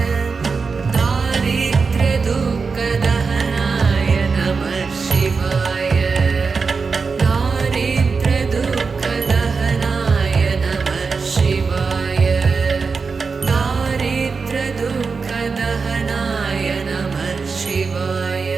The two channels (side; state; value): left; quieter; 4.8 dB